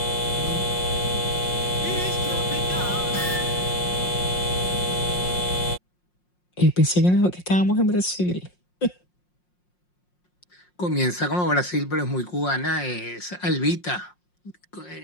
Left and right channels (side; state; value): right; late; 5.6 ms